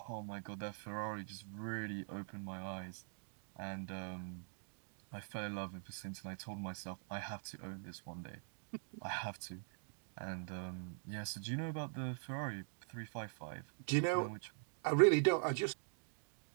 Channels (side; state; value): left; silent; digital silence